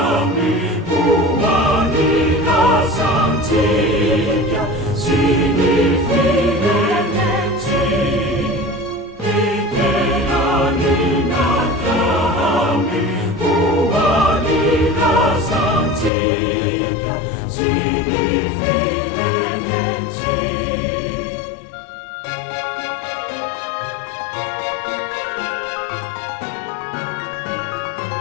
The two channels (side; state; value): right; drops out; at 16.1 s